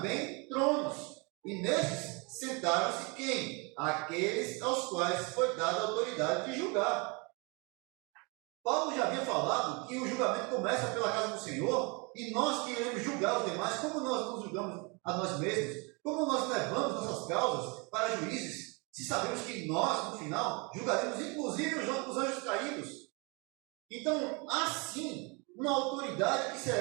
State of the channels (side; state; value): left; quieter; 30.3 dB